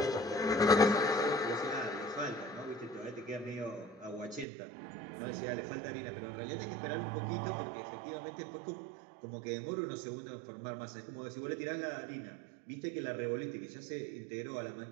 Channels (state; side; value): drops out; left; at 4.5 s